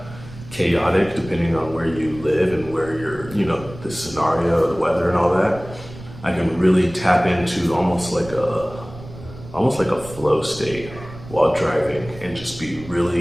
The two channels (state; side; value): noise; right; rumble, 16 dB below the sound